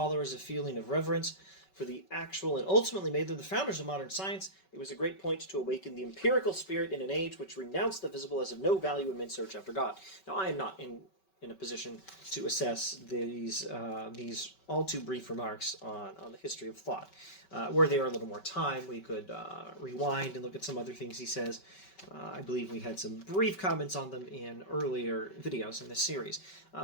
a feeling of reverence for the actual and ultimately made them the founders of modern science, it was a great point to awaken the empirical spirit in an age which renounced the visible as of no value in men's search after God. Now, I am not in a position to assess these all too brief remarks on the history of thought. Were there a little more time, we could rewind and look at some other things he says. I believe we had some brief comments on them in earlier videos in this series.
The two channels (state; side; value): late; right; 5.2 ms